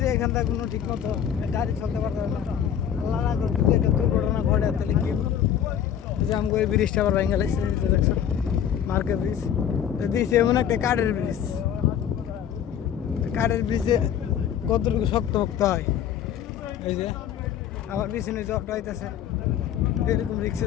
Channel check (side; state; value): right; quieter; 9.2 dB